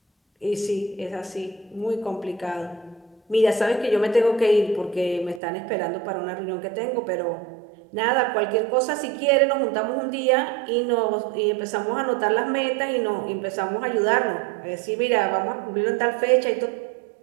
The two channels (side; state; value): left; drops out; at 5.4 s